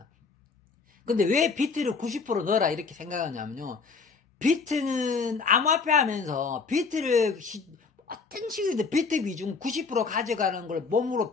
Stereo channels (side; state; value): right; quieter; 4.8 dB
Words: 근데 왜 비트를 90% 넣어라 이렇게 생각하냐면요. 비트는 암호화폐 하면서 비트를 어떤 식이든 비트 비중 90% 가져가는 걸 몸으로